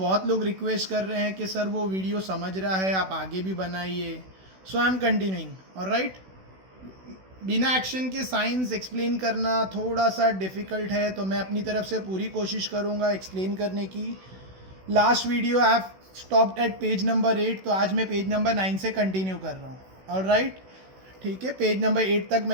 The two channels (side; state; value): left; late; 16 ms